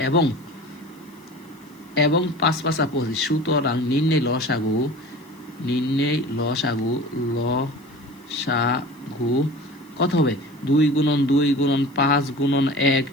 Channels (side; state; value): left; noise; hiss, 30 dB below the sound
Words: এবং 5 5 25। সুতরাং নির্ণয় লসাগু কত হবে? 2 গুণন 2 গুণন 5 গুণন 1